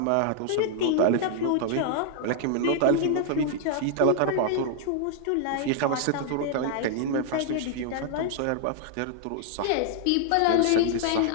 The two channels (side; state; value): both; different; correlation -0.01